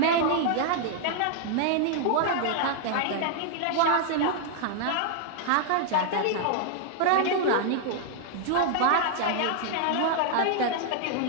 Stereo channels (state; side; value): different; both; correlation 0.00